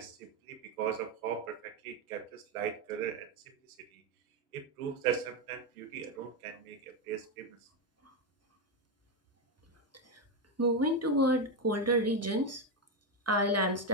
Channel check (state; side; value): normal; both; correlation 0.09